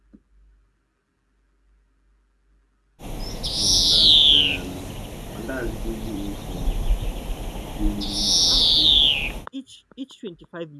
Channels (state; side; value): identical; both; correlation 1.00